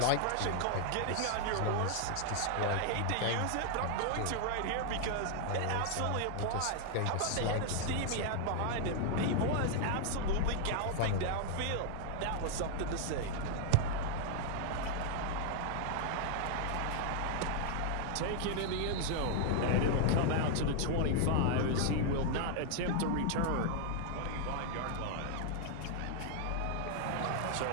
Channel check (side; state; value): both; different; correlation 0.00